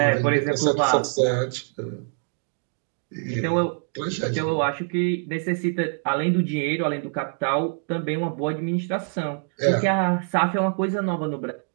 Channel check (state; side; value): silent; left; 60 dB below the other